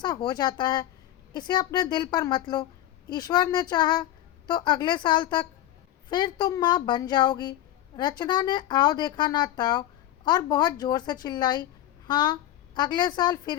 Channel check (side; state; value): right; quieter; 13.3 dB